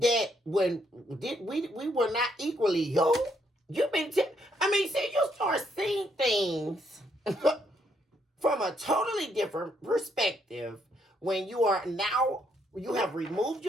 when we were not equally yoked? You've been see, you start seeing things from a totally different perspective when you have removed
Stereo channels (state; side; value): normal; both; correlation 0.73